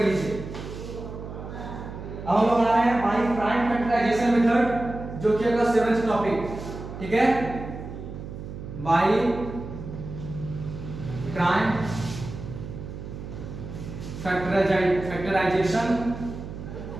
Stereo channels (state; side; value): noise; right; hum, 10 dB below the sound